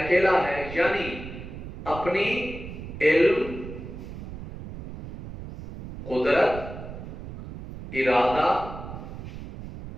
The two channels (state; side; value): noise; right; rumble, 11 dB below the sound